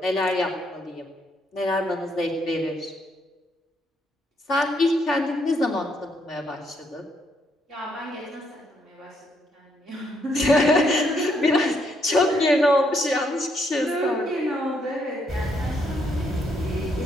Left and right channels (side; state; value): both; normal; correlation 0.74